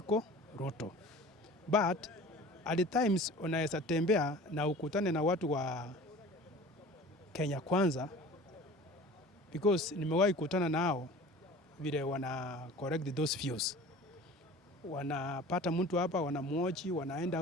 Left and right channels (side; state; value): both; normal; correlation 0.42